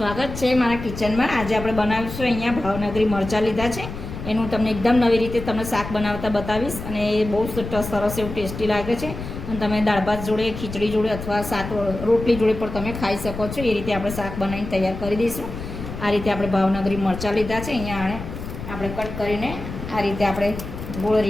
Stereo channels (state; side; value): noise; left; rumble, 9 dB below the sound